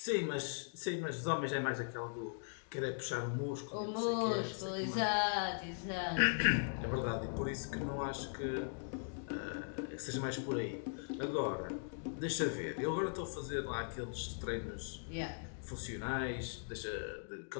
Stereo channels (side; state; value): right; silent; digital silence